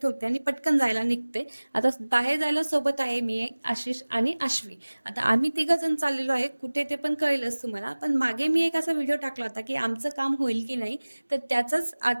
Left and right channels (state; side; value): inverted; both; correlation -1.00